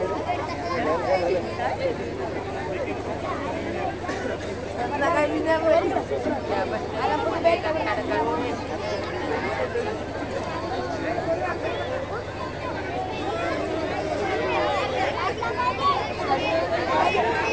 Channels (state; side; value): identical; both; correlation 1.00